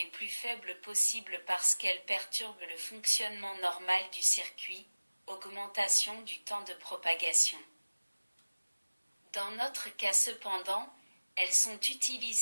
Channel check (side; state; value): both; inverted; correlation -1.00